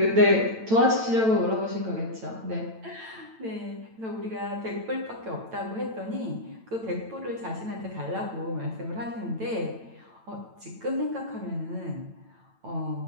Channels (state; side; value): late; left; 9.0 ms